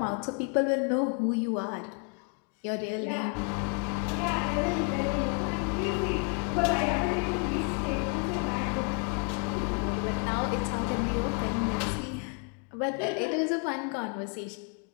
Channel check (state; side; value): quieter; right; 33.6 dB